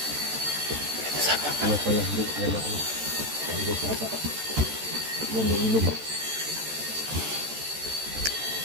Ano pala, hindi yan ako. Hindi sapa. Yan ang ilog.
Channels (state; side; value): late; left; 14 ms